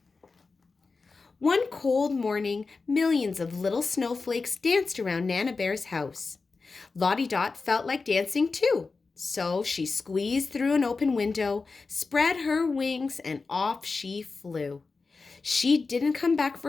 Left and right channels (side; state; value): right; quieter; 4.2 dB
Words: One cold morning, millions of little snowflakes danced around Nana Bear's house. Lottie Dot felt like dancing too, so she squeezed through an open window, spread her wings, and off she flew. She didn't come back